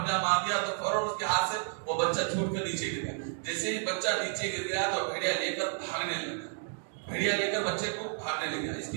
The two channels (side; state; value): left; silent; 57 dB below the other